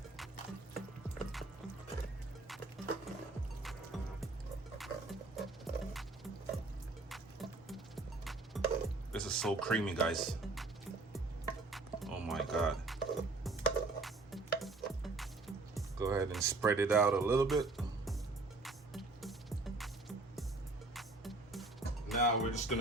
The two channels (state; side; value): quieter; left; 3.3 dB